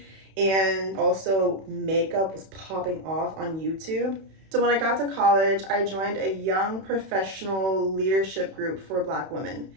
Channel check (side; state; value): left; late; 31 ms